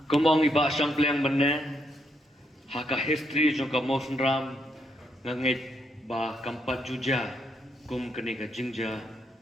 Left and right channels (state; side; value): normal; both; correlation 0.78